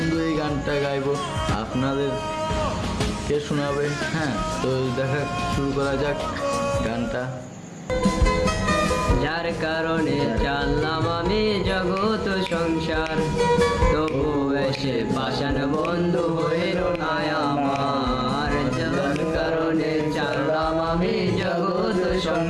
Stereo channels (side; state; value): both; identical; correlation 1.00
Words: এই গানটা গাইবো, আপনাদেরকে শোনাবে। হ্যাঁ, তো দেখা শুরু করা যাক গানটা। যার কারণে চাললাম আমি জগৎ সংসার, তবু এসে পাষাণ বন্ধু হইল না আমার। যার কারণে চাললাম আমি জগৎ